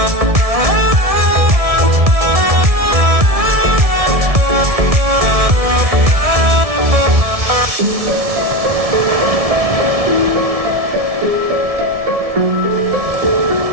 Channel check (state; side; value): late; left; 1.7 ms